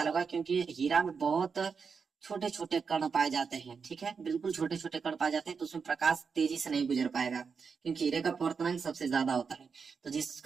होगा, क्योंकि हीरा में बहुत छोटे छोटे कण पाए जाते हैं। ठीक है, बिल्कुल छोटे छोटे कण पाए जाते हैं, तो उसमें प्रकाश तेजी से नहीं गुजर पाएगा, क्योंकि हीरे का अपवर्तनांक सबसे ज्यादा होता है। तो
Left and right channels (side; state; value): left; quieter; 5.7 dB